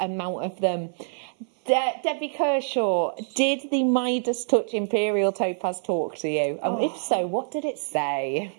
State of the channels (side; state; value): left; silent; 57 dB below the other